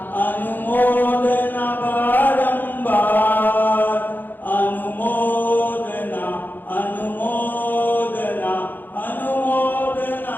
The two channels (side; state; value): right; late; 0.089 ms